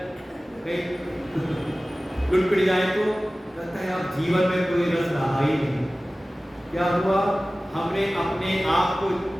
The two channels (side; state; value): both; normal; correlation 0.97